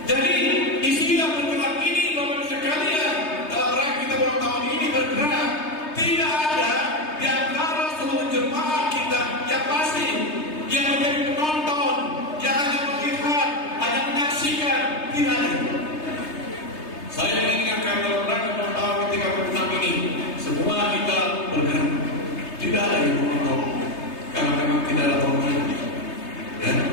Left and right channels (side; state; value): right; late; 3.3 ms